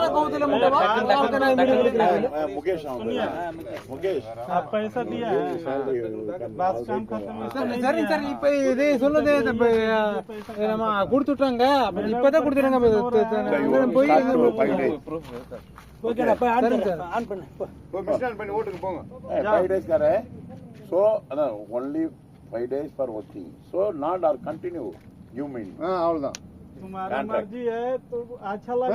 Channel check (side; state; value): both; identical; correlation 1.00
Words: कहू दिले मुके बात के नहीं मुकेश मुकेश आप पैसा दिया है, बस काम खत्म है। சரி சரி இப்ப இது சொல்லுதே நம்ம கொடுத்துட்டாங்க, இப்பதான் கொடுத்துறாங்க போய் ஓகேடா போய் ஆன் பண்ணு तो मिशन பண்ணி ஓட்டுக்கு போங்க. 5 days करे so only 5 days for working, so not or continue you mean அவ்வளவுதான். तुम्हारी मर्जी है तो अच्छा लगा